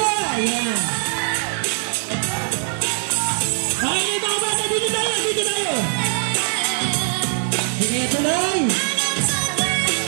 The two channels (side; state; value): left; silent; 57 dB below the other